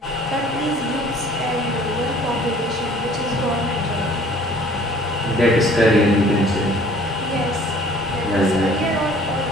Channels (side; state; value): both; normal; correlation 0.53